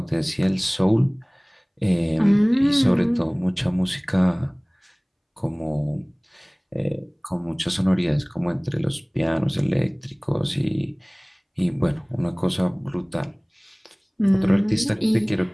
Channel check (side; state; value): both; identical; correlation 1.00